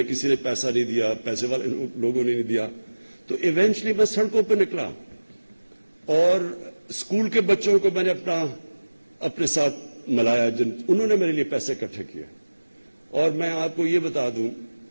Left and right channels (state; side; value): inverted; both; correlation -1.00